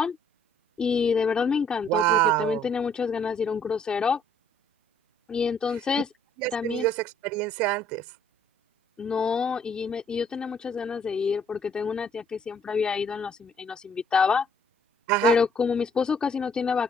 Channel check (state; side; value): normal; both; correlation 0.64